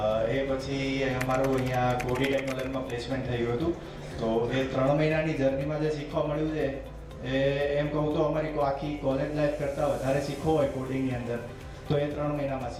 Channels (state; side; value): identical; both; correlation 1.00